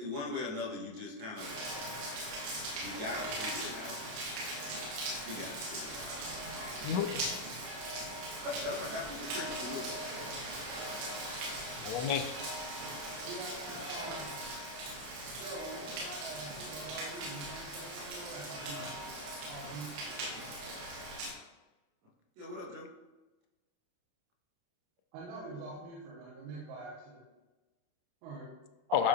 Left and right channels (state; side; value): late; left; 28 ms